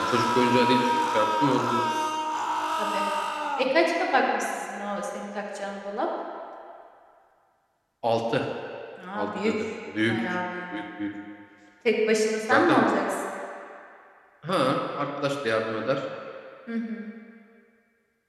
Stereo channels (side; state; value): both; identical; correlation 1.00